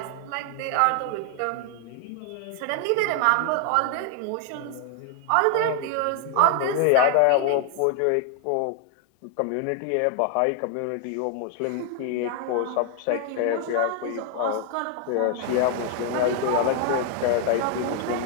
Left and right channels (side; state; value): both; different; correlation 0.00